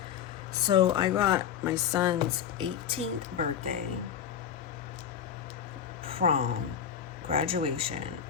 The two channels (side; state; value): right; quieter; 8.6 dB